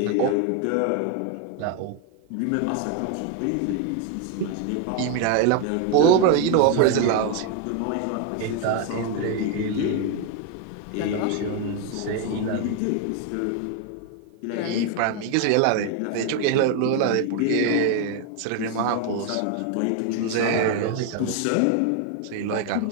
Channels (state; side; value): different; both; correlation 0.01